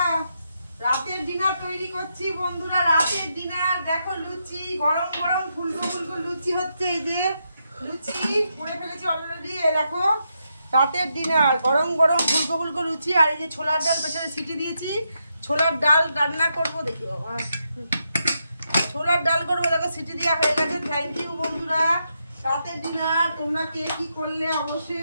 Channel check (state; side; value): inverted; both; correlation -0.82